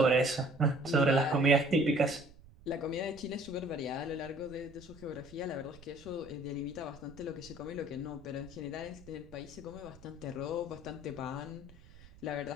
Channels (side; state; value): right; noise; rumble, 21 dB below the sound